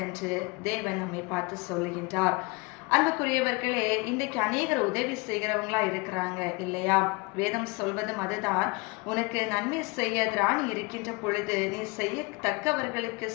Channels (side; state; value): right; quieter; 27.0 dB